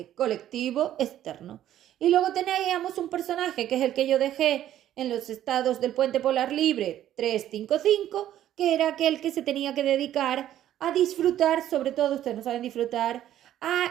colectivo externo. Y luego teníamos un personaje, que es el que yo dejé en los estados del puente polar libre 355, que era aquel que se tenía que dedicar a disfrutar, sobre todo ustedes no saben disfrutar,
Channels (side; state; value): left; quieter; 12.0 dB